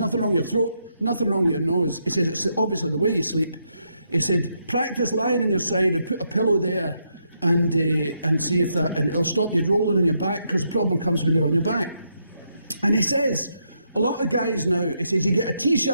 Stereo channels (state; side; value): inverted; both; correlation -0.79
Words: wrong with your throat, nothing wrong with your nose. He says, it's obviously the way you sleep. He said, practice lying on your side and put a pillow there and see if that, and it'll stop you rolling on your back because the problem comes when you're on your back. And he says, a lot of guys now, he says, you get a